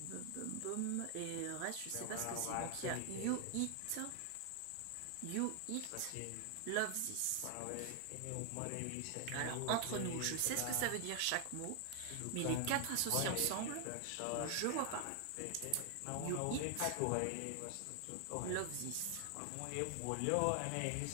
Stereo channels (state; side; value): different; both; correlation 0.00